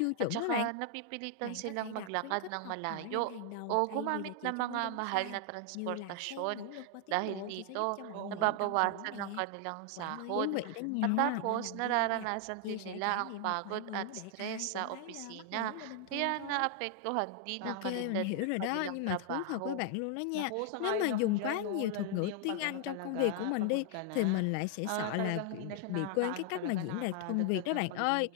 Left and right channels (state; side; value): different; both; correlation 0.00